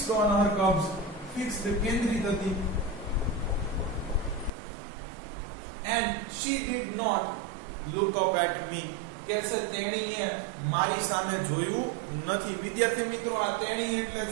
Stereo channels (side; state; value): left; drops out; at 4.5 s